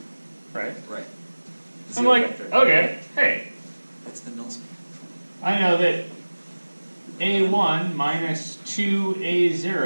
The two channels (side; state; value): both; inverted; correlation -1.00